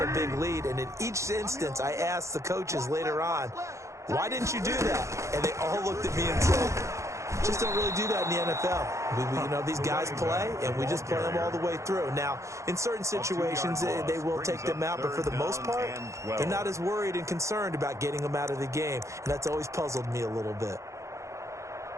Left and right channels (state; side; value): late; left; 0.14 ms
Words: a big lead. And in each instance, I asked the coaches later on, why didn't you do that? And they all looked at me and said, just don't really do that in the NFL. You know, these guys play, and we just play them all the way through. Now, in certain situations, they will take them out, but for the most part, they're not as worried and concerned about getting them out of the game, and that's always puzzled me a little bit.